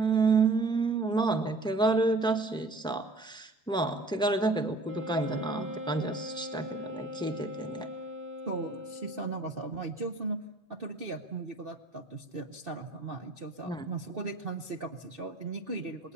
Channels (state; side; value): quieter; left; 3.1 dB